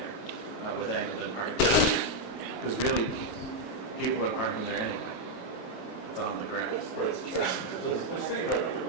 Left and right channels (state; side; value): late; right; 32 ms